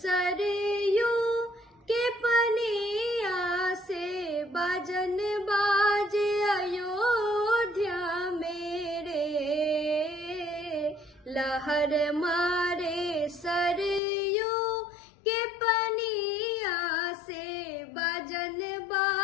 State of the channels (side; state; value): right; drops out; at 14.0 s